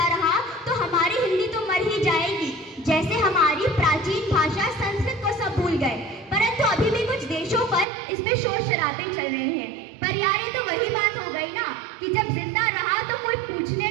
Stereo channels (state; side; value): drops out; left; at 7.9 s